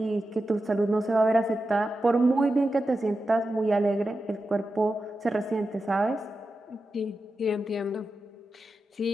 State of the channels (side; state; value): both; normal; correlation 0.91